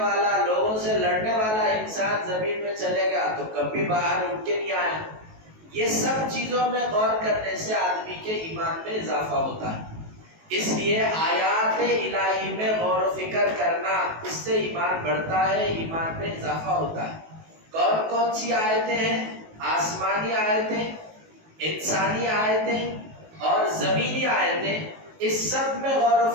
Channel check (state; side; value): late; left; 19 ms